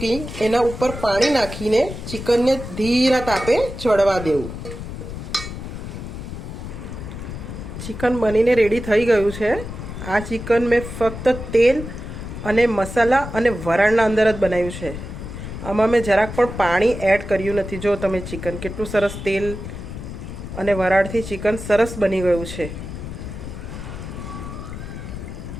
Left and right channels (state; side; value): noise; left; rumble, 9 dB below the sound